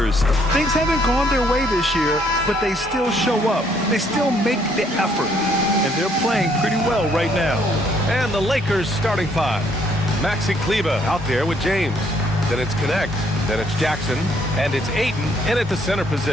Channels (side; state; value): both; normal; correlation 0.67